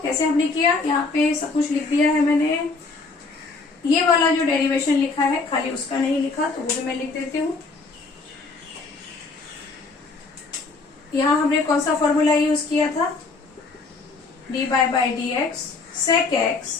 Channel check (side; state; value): right; quieter; 4.0 dB